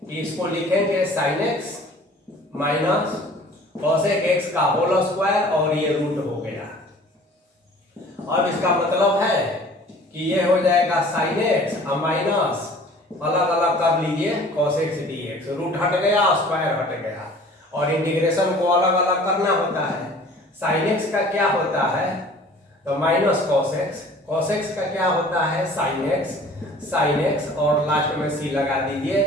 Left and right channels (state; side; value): normal; both; correlation 0.48